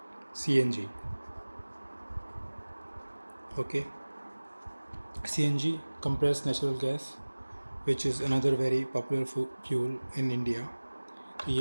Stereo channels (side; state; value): both; inverted; correlation -1.00